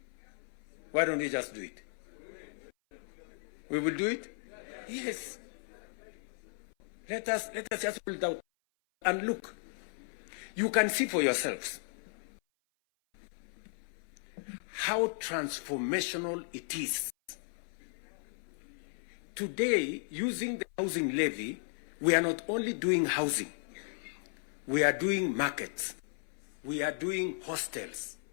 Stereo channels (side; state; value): right; silent; 54 dB below the other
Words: Why don't we just do it? We will do it? Yes. Let us just hold out and look. You can see for yourselves how transformational it is. Today, using the housing levy, we are not only doing housing, we are doing markets, we are doing hostels.